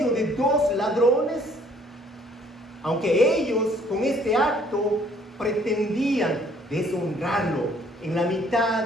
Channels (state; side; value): normal; both; correlation 0.60